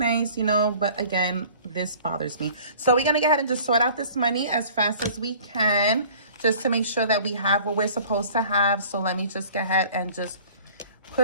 you know, but again, this bothers me. So we're going to go ahead and just sort out this money as fast as we can, just to make sure that we have what we're supposed to have. So let me just go ahead and just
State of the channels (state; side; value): inverted; both; correlation -0.49